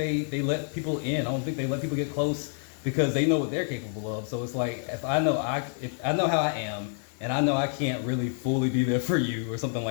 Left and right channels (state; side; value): silent; right; 59 dB below the other